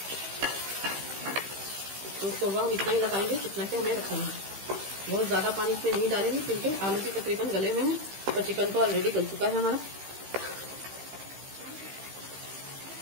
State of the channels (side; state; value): left; late; 15 ms